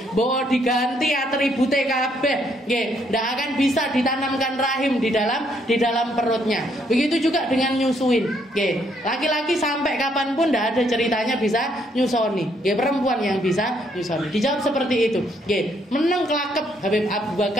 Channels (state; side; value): normal; both; correlation 0.71